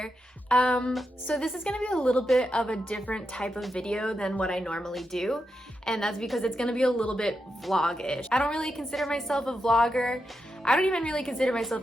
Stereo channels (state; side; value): normal; both; correlation 0.86